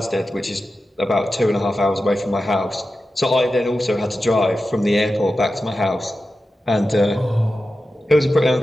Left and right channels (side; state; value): both; normal; correlation 0.92